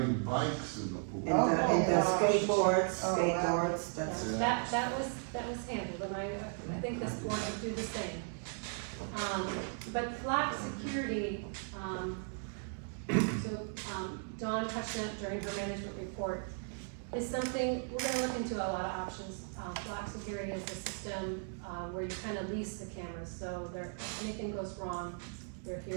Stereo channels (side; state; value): left; silent; 54 dB below the other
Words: bikes in the pool. and the gosh. skateboards, Oh, wow. that's, Yeah. That was handled, and I think this board would do the same. But flock security, Dawn touched on it during her management report, is something, we're gonna look into a lot of options. Flock security is a system, where you kind of lease the cameras, so if anything goes wrong, they're